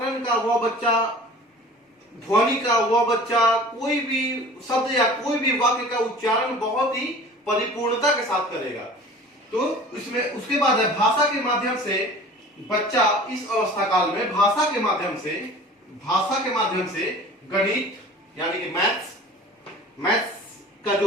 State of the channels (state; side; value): normal; both; correlation 0.43